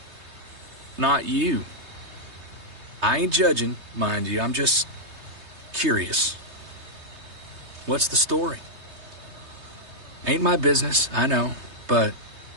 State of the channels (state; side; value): late; left; 3.3 ms